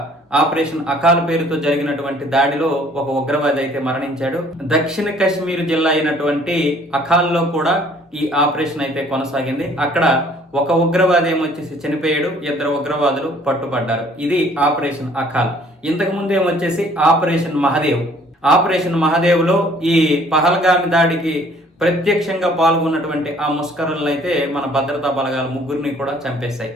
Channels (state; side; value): normal; both; correlation 0.57